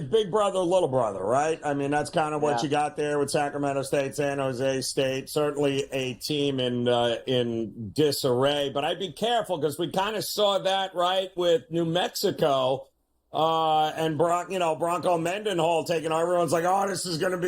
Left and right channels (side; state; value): both; identical; correlation 1.00